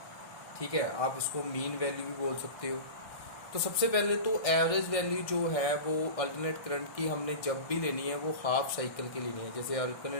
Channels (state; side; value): late; right; 1.6 ms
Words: ठीक है, आप इसको मीन वैल्यू भी बोल सकते हो। तो सबसे पहले तो एवरेज वैल्यू जो है वो अल्टरनेट करंट की हमने जब भी लेनी है वो हाफ साइकिल की लेनी है। जैसे